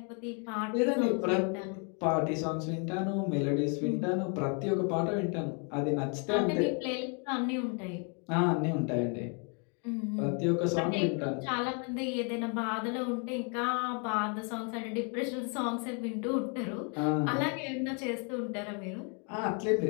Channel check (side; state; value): right; quieter; 37.8 dB